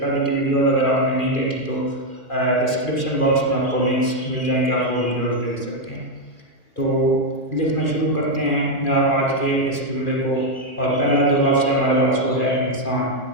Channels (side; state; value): right; late; 2.4 ms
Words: की वीडियो अगर आपने नहीं देखी तो डिस्क्रिप्शन बॉक्स में आपको लिंक्स मिल जाएंगे, आप वो वीडियोज़ देख सकते हैं। तो लिखना शुरू करते हैं आज के इस जुमले को। और पहला जो लफ्ज़ है हमारे पास वो है इंसान।